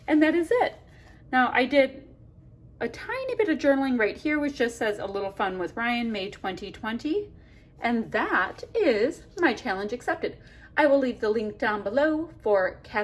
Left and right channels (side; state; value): both; identical; correlation 1.00